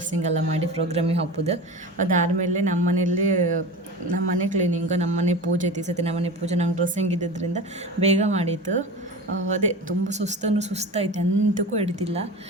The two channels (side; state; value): both; normal; correlation 0.30